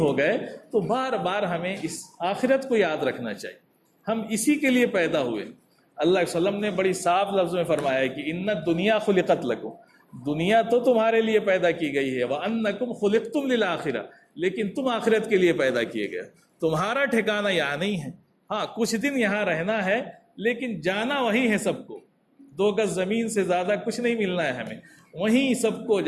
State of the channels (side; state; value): both; identical; correlation 1.00